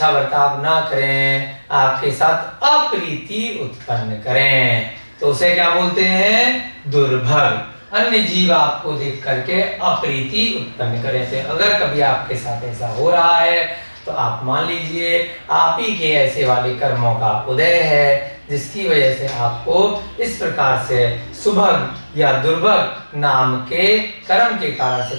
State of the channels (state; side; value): inverted; both; correlation -1.00